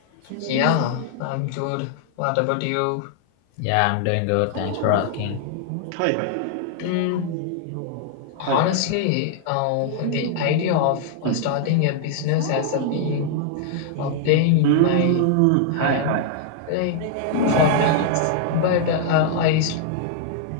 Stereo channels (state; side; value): different; both; correlation 0.00